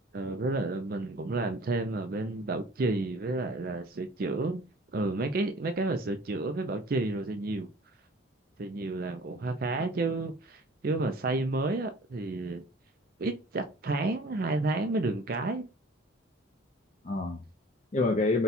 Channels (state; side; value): normal; both; correlation 0.48